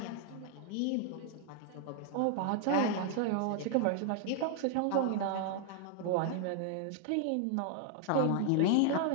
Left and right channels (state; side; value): different; both; correlation 0.00